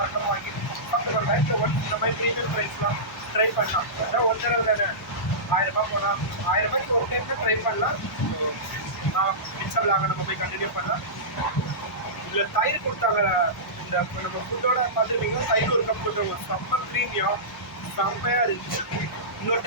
வாங்கி சாப்பிட்டு லைஃப்பில் இந்த மாதிரி ப்ரீமியம் ப்ரைஸ்லாம் ட்ரை பண்ணலாம். அதான் ஒரு தடவை தானே 1000 ரூபாய் போகலாம். 1000 ரூபாய்க்கு ஒரு டைம் தான் ட்ரை பண்ணலாம். மிச்சம் விளாங்க நம்ம போய் கண்டினியூ பண்ணலாம். இதில் தயிர் கொடுத்தாங்க. இந்த நம்ம ஃபுட்டோட பார்த்துட்டிங்கன்னா தயிர் ஒரு கப் கொடுத்துருவோம். செம்ம ப்ரீமியம், செம்மையாக இருந்துச்சு. இன்னொரு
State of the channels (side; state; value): both; normal; correlation -0.19